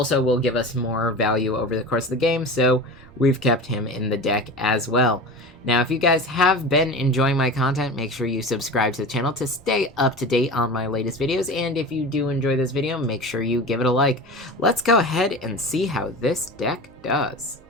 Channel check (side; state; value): both; normal; correlation 0.31